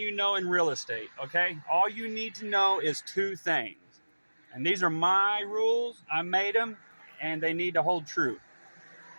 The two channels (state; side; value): inverted; both; correlation -1.00